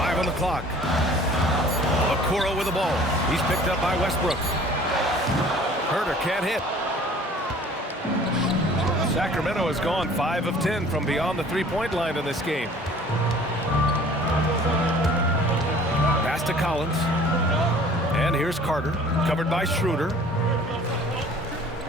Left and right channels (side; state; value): both; normal; correlation 0.50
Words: on the clock. Okoro with the ball. He's picked up by Westbrook. Herder can't hit. Sacramento has gone 5 of 10 from beyond the 3-point line in this game. Pass to Collins. And here's Carter, covered by Schroeder.